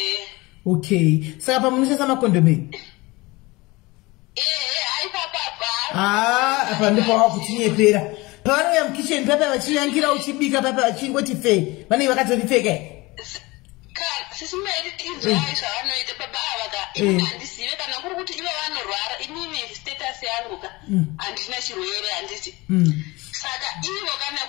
Okay, saka pamunoshandisa makondomu apa ndipo wakuchinyepera pavanouya mukicheni papa vachinyangira uchibika papa vachingoti fe vanenge vakatoripfeka sisimairi inzwai zvavanoita baba ava handizive kana kuri kuti ivo vanorwara inini status yangu ka handina chirwere handiti saka ivo kana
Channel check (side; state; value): right; quieter; 22.5 dB